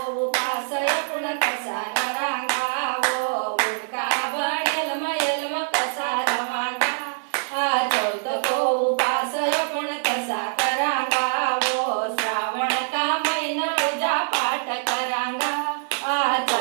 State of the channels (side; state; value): left; silent; digital silence